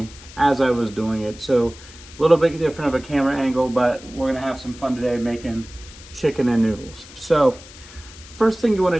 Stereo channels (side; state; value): left; noise; hiss, 19 dB below the sound